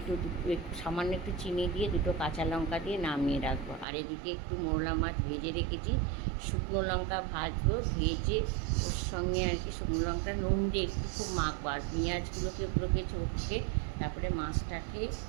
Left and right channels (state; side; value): drops out; left; at 3.9 s